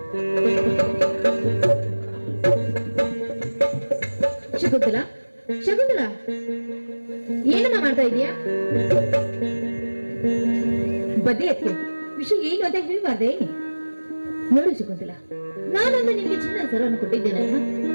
ಶಕುಂತಲ, ಶಕುಂತಲ, ಏನಮ್ಮ ಮಾಡ್ತಾ ಇದೀಯಾ? ಬದ್ದೆ ಅತ್ತೆ, ವಿಷಯ ಏನು ಅಂತ ಹೇಳ್ಬಾರ್ದೆ? ನೋಡು ಶಕುಂತಲ, ನಾನೊಂದು ನಿನ್ಗೆ ಚಿನ್ನ ಸರವನ್ನು ಕೊಟ್ಟಿದ್ದೇನಲ್ಲ,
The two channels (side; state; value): both; inverted; correlation -1.00